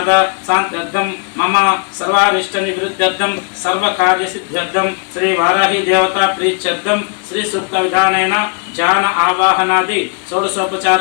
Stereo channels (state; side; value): quieter; right; 37.3 dB